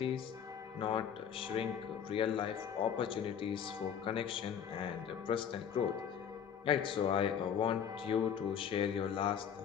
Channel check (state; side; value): quieter; right; 8.2 dB